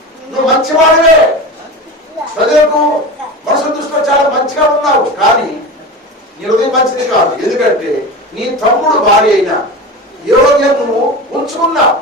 నువ్వు మంచివాడివే, ప్రజలకు మనసు దృష్టిలో చాలా మంచిగా ఉన్నావు, కానీ నీ హృదయం మంచిది కాదు. ఎందుకంటే నీ తమ్ముడు భార్య అయినా యోగ్యం నువ్వు ఉంచుకున్నావు.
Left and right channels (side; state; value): both; normal; correlation 0.27